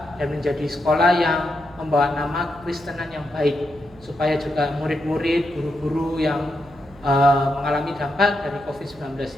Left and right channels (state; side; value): noise; right; hum, 24 dB below the sound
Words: dan menjadi sekolah yang membawa nama Kristenan yang baik, supaya juga murid-murid, guru-guru yang mengalami dampak dari COVID-19